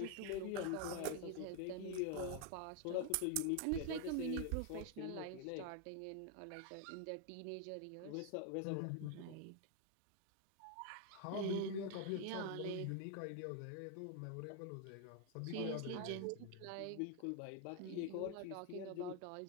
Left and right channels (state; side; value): different; both; correlation 0.00